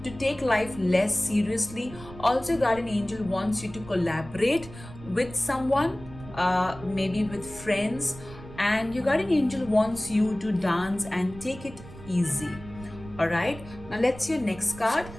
to take life less seriously. Also, your guardian angel wants you to collaborate with someone, maybe with friends, and your guardian angel wants you to dance and take it easy. All right, now let's see your next card.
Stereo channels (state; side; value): noise; right; rumble, 16 dB below the sound